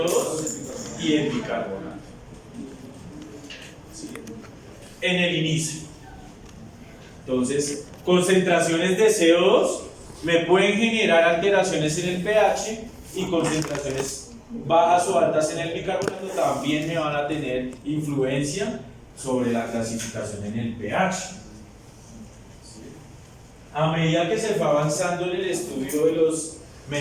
y el bicarbonato. En el inicio. Entonces, concentraciones de CO2 me pueden generar alteraciones en el pH, y concentraciones bajas o altas en el bicarbonato también me van a tener influencia sobre la clasificación en el pH. A medida que se fue avanzando en el estudio de las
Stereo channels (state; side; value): identical; both; correlation 1.00